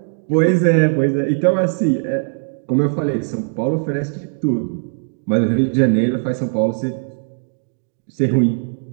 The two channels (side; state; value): left; silent; digital silence